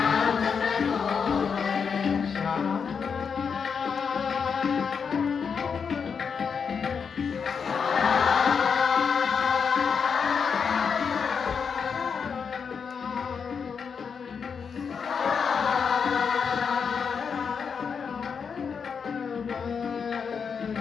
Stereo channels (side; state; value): right; quieter; 6.2 dB